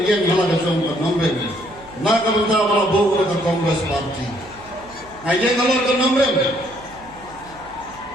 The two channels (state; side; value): noise; right; hum, 22 dB below the sound